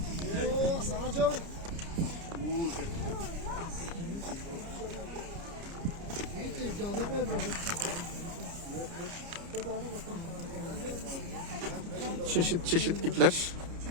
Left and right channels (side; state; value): left; late; 29 ms